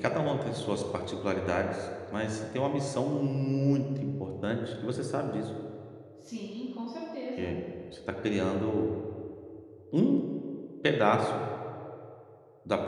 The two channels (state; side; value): identical; both; correlation 1.00